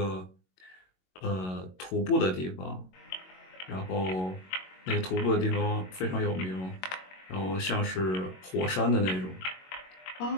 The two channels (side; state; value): right; late; 22 ms